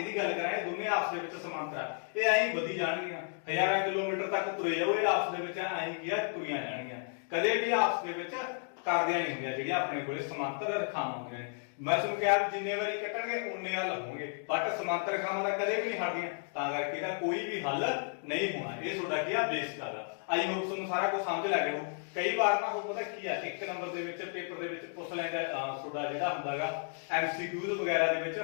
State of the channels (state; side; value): silent; right; 56 dB below the other